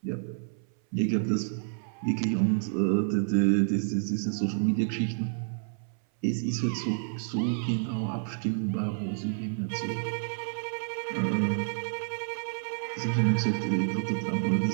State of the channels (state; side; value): silent; left; 58 dB below the other